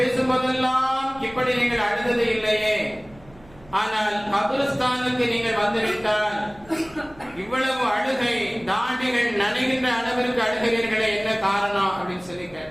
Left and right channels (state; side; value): noise; right; hum, 24 dB below the sound